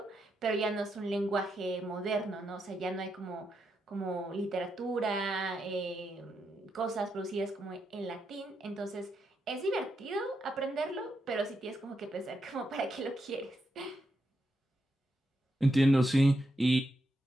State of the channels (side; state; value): both; normal; correlation 0.83